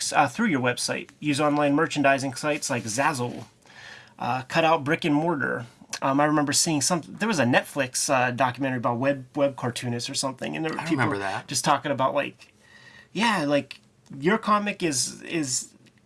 through your website. Use online merchandising sites like Zazzle. Cut out brick and mortar. I remember seeing there was a Netflix documentary about web cartoonists or something, and there were people just talking about like your comic is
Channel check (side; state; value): both; identical; correlation 1.00